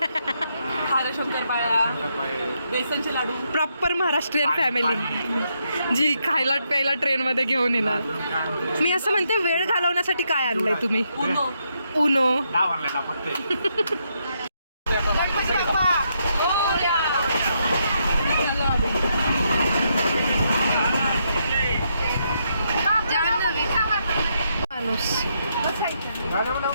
बेसनचे लाडू. प्रॉपर महाराष्ट्रीयन फॅमिली जी खायला प्यायला ट्रेनमध्ये घेऊन येणार. मी असं म्हणते, वेळ घालवण्यासाठी काय आणलंय तुम्ही? उनो. माणूस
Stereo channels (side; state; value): both; inverted; correlation -0.78